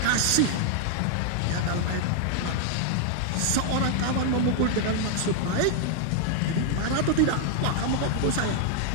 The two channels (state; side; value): different; both; correlation 0.00